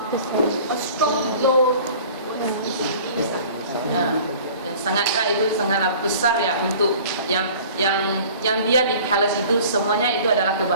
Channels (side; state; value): both; inverted; correlation -0.46